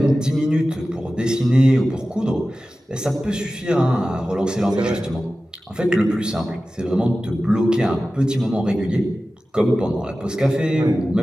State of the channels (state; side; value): normal; both; correlation 0.95